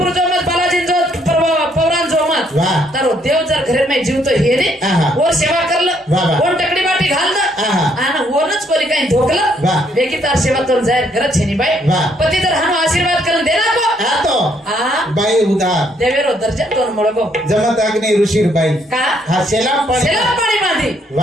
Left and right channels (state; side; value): normal; both; correlation 0.69